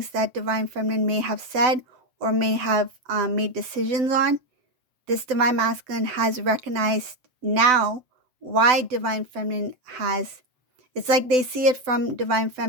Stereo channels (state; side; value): late; left; 7.6 ms